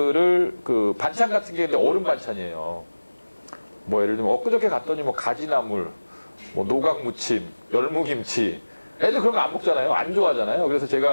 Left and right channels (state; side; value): inverted; both; correlation -1.00